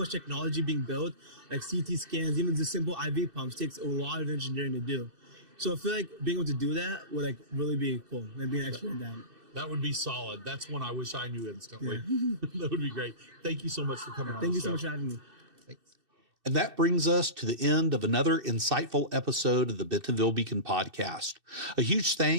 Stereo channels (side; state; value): left; late; 2.6 ms